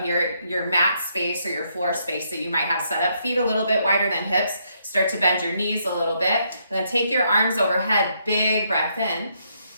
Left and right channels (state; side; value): inverted; both; correlation -0.75